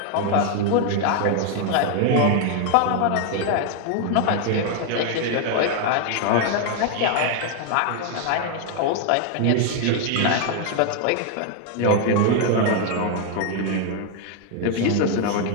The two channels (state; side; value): different; both; correlation 0.01